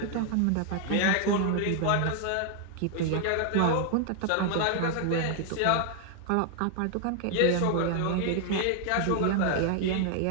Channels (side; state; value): both; different; correlation 0.00